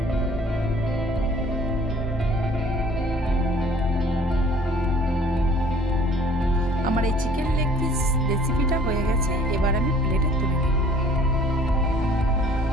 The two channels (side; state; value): both; normal; correlation 0.53